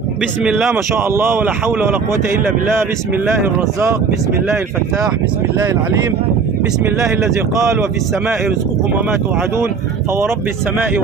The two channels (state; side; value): quieter; left; 5.5 dB